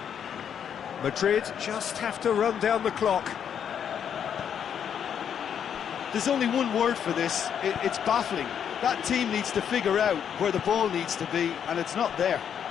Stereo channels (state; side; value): quieter; right; 8.4 dB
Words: Madrid just have to run down the clock. There's only one word for this, it's baffling. That team needs to figure out where the ball needs to be, and it's not there.